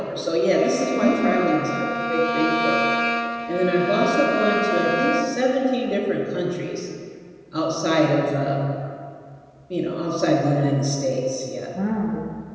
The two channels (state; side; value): identical; both; correlation 1.00